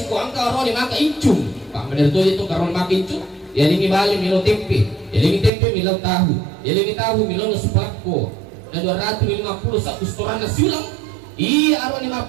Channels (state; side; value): drops out; left; at 5.5 s